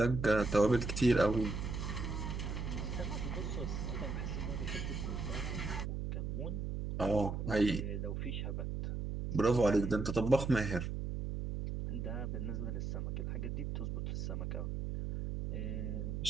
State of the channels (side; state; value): right; noise; hum, 3 dB below the sound